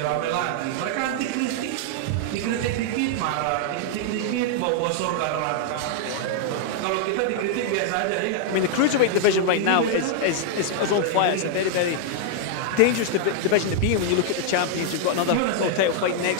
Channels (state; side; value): different; both; correlation -0.01